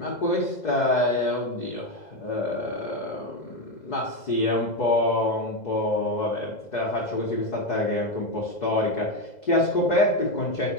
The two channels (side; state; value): right; late; 2.0 ms